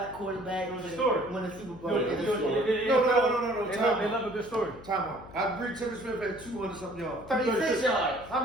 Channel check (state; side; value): noise; left; hum, 18 dB below the sound